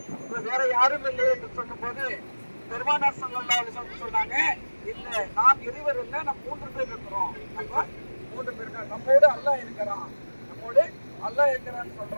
வேற யாரும் இல்லை என்று சொல்லும் போது பெருமானார் ஸல்லல்லாஹு அலைஹி வஸல்லம் சொன்னாங்க, இல்ல நாம் இருவர் இல்லை, நம்ம 3 பேர் இருக்கிறோம். நம்ம 3 பேர் இருக்கோம். நம்மோடு அல்லாஹ் இருக்கிறான், நம்மோடு அல்லாஹ் இருக்கிறான்னு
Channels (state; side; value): inverted; both; correlation -1.00